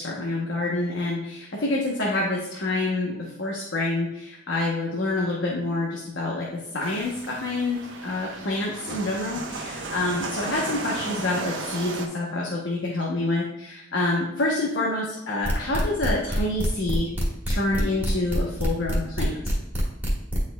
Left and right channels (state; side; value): normal; both; correlation 0.47